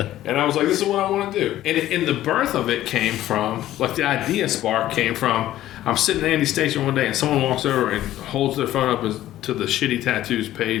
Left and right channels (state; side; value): quieter; right; 13.8 dB